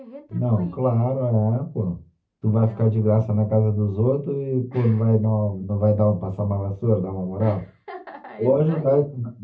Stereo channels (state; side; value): identical; both; correlation 1.00